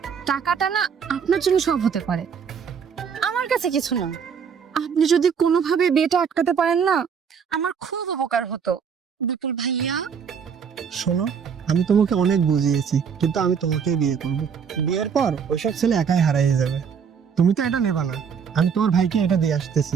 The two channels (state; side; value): quieter; left; 6.8 dB